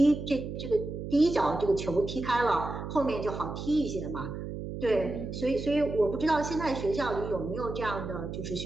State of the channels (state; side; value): noise; right; hum, 7 dB below the sound